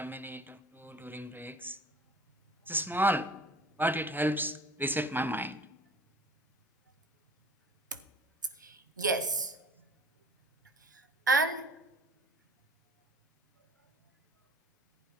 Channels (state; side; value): normal; both; correlation 0.46